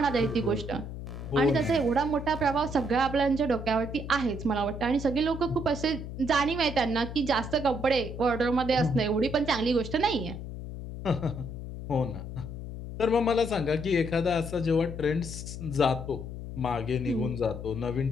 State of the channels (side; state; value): left; noise; hum, 9 dB below the sound